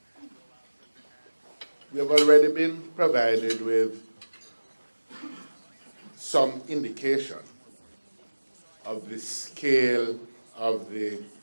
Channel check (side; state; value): both; inverted; correlation -1.00